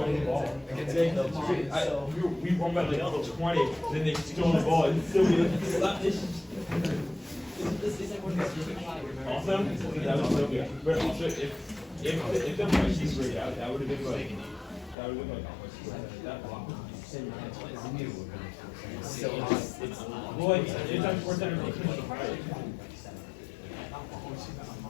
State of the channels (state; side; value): drops out; right; at 15.0 s